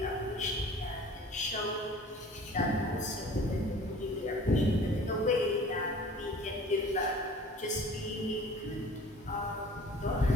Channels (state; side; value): normal; both; correlation 0.46